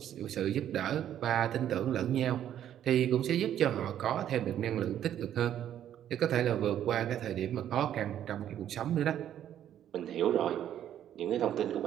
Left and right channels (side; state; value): left; quieter; 10.7 dB